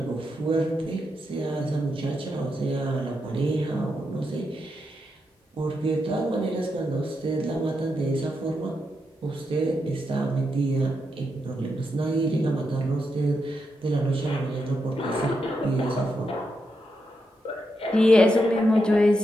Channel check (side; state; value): both; normal; correlation 0.84